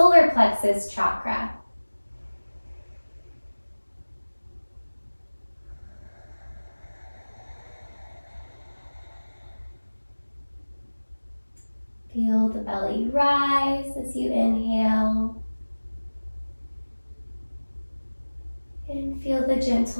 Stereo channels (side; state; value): both; inverted; correlation -1.00